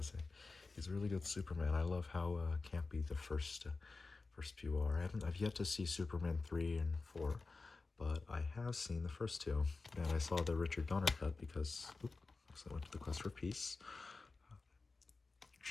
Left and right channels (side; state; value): right; quieter; 3.8 dB